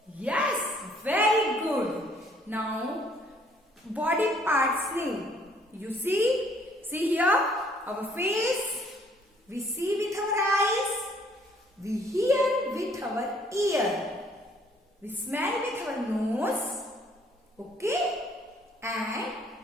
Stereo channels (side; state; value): both; normal; correlation 0.63